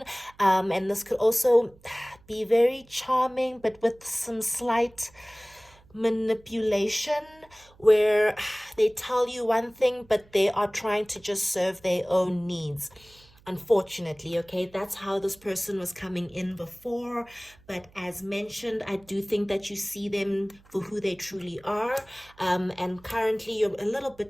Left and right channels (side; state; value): right; noise; hum, 28 dB below the sound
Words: And this could also be very charming, but with some slight manipulation, where they tell you one thing, but they are trying to just serve their own needs. Unfortunately, okay, that's how this person was coming in before. But as mentioned, I do think that you see them for who they truly are. And currently you're a little